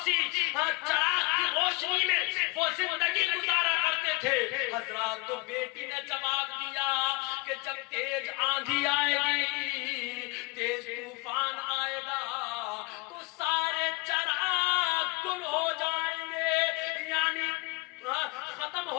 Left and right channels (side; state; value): right; quieter; 26.4 dB